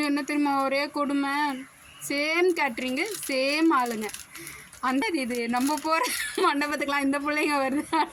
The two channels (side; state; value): both; identical; correlation 1.00